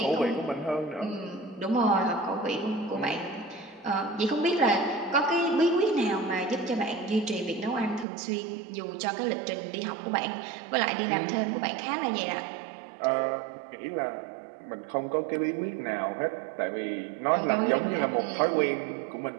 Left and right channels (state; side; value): drops out; left; at 8.1 s